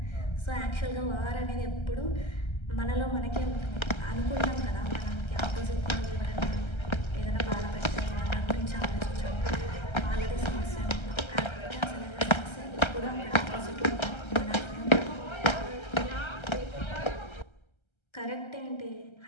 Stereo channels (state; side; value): late; right; 1.3 ms